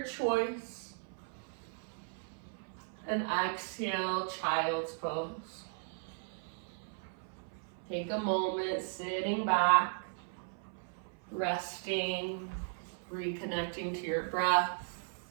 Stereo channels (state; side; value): silent; left; 53 dB below the other